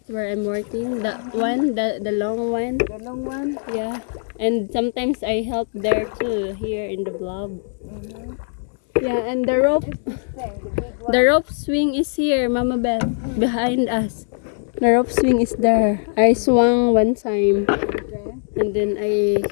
where I'm working. The one, the long one. The long one. Yeah. And sometimes I help there too, here in the blob. Mm-hmm. Yeah, and the rope. This thing, the big one. The rope swing is here, Mama Beth, behind us. The rope swing is there. I swung one time, Okay. and then I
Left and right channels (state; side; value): silent; right; 65 dB below the other